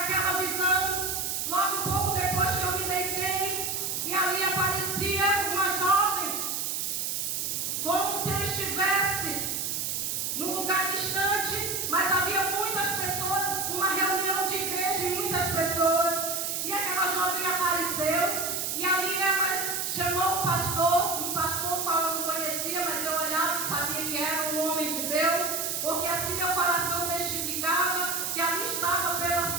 visão, logo um pouco depois que eu me deitei, e ali aparecia uma jovem, como se eu estivesse num lugar distante, mas havia muitas pessoas, uma reunião de igreja e muitas pessoas, e aquela jovem apareceu, e ali ela chamou um pastor qual eu não conhecia, mas eu olhava e sabia que era um homem de Deus, porque assim meu coração testificava que ali estava pela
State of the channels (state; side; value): noise; right; hiss, 1 dB below the sound